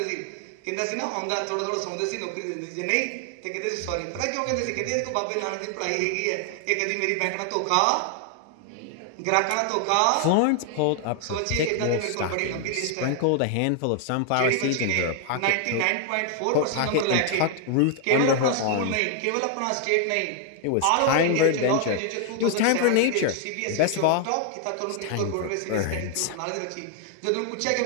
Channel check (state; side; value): different; both; correlation 0.00